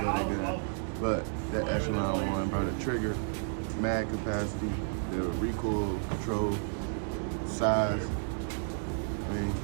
love that gun. But that Echelon one, bro, the trigger, mag capacity, the recoil control, size. I mean,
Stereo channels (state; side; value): silent; left; digital silence